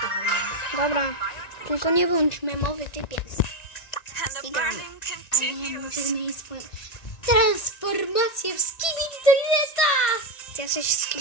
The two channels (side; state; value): right; late; 1.9 ms